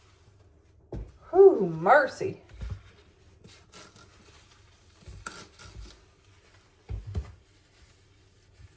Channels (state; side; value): identical; both; correlation 1.00